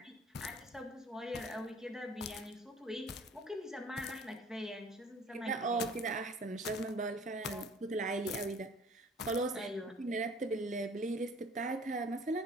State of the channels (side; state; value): both; normal; correlation 0.51